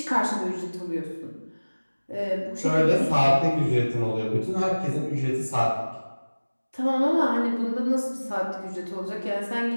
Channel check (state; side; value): inverted; both; correlation -1.00